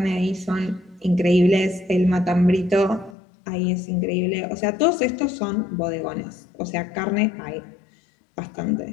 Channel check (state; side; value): drops out; right; at 3.2 s